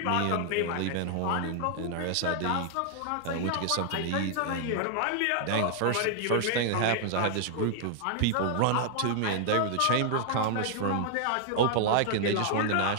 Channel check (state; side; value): different; both; correlation -0.01